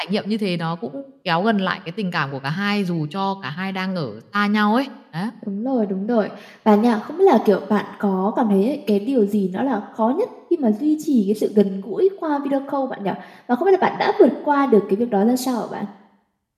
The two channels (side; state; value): both; identical; correlation 1.00